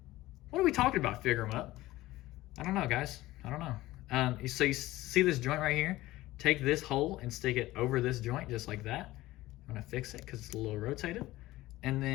What are we talking about, FigureEmUp? I don't know, guys. I don't know. So you see this joint right here? Take this hole and stick it over this joint just like that. I'm gonna fix it because it's a little rotated. And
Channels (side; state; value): right; quieter; 17.3 dB